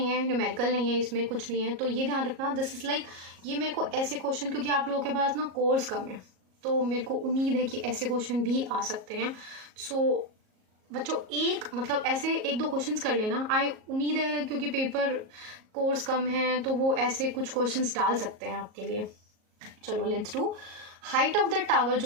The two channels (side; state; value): left; late; 38 ms